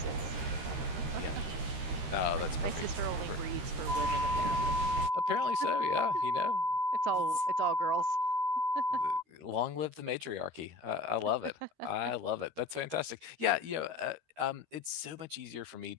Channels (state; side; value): late; left; 13 ms